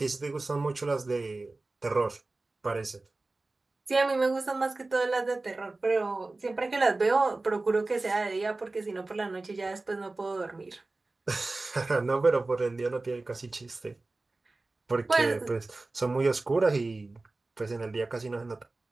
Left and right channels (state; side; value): quieter; left; 3.2 dB